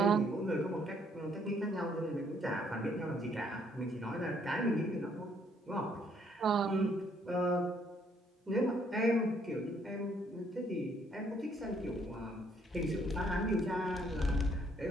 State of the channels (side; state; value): both; normal; correlation 0.67